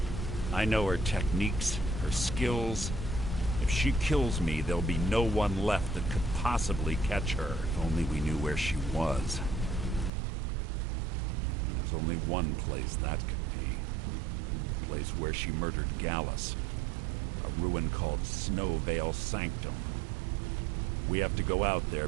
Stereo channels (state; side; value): drops out; left; at 10.1 s